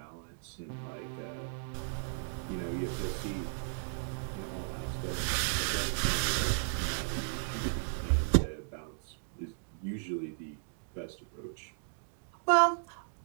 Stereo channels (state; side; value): silent; left; digital silence